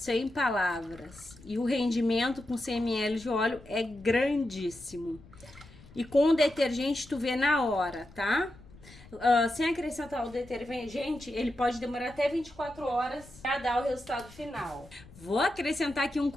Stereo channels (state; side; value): noise; left; rumble, 21 dB below the sound